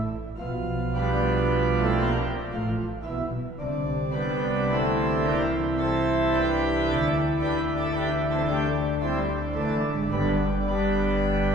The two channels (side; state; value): both; normal; correlation 0.62